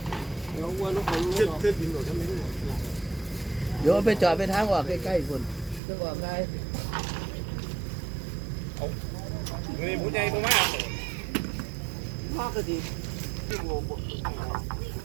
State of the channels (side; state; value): left; drops out; at 5.8 s